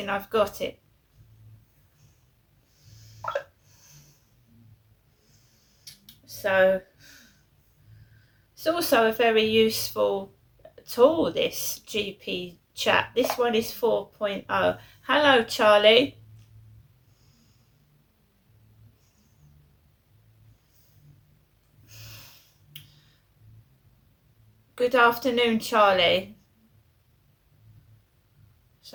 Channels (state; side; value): identical; both; correlation 1.00